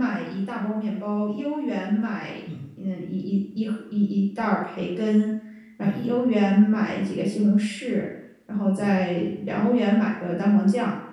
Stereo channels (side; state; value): both; identical; correlation 1.00